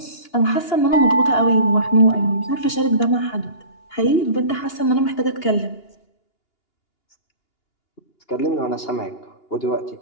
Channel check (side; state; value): right; late; 2.8 ms